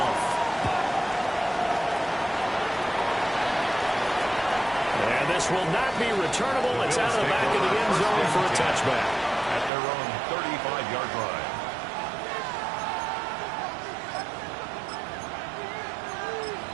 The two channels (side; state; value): left; drops out; at 9.7 s